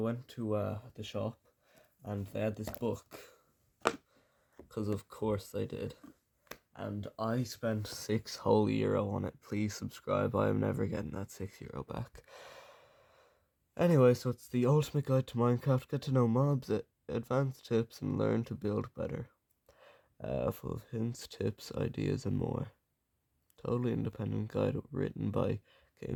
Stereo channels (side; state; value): both; identical; correlation 1.00